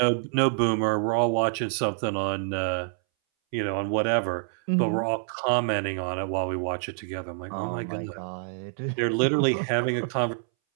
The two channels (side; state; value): left; silent; 60 dB below the other